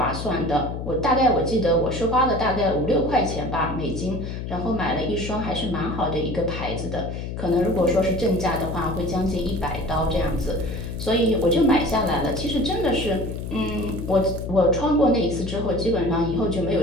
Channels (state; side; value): noise; left; hum, 6 dB below the sound